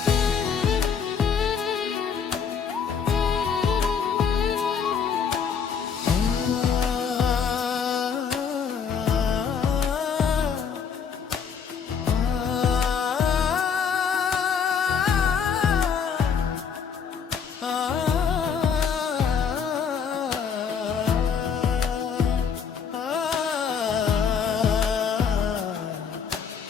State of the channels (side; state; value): right; quieter; 6.7 dB